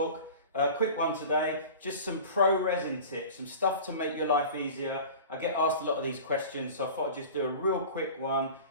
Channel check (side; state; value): both; inverted; correlation -0.38